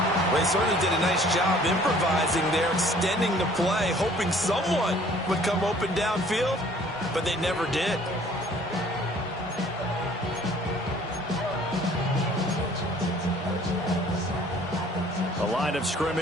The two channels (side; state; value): both; normal; correlation 0.55